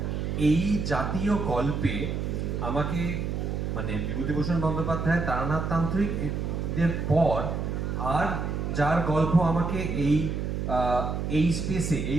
এই জাতীয় গল্পে আমাকে মানে বিভূতিভূষণ বন্দ্যোপাধ্যায়, তারানাথ তান্ত্রিক এদের পর আর যার গল্প আমাকে এই স্পেসে,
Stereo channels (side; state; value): right; noise; hum, 2 dB below the sound